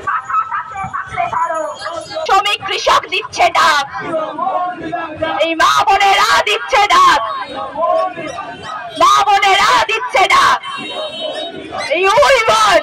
শ্রমিক কৃষক দিচ্ছে ডাক, এই মা বোনেরা দিচ্ছে ডাক, মা বোনেরা দিচ্ছে ডাক। এই ওই বোন,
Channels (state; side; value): identical; both; correlation 1.00